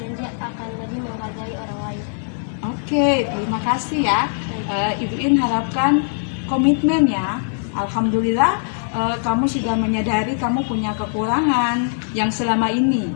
lebih menghargai orang lain. Oke, terima kasih ya. Ibu In harapkan komitmen ya. Alhamdulillah kamu sudah menyadari kamu punya kekurangan yang selama ini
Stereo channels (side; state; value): right; silent; digital silence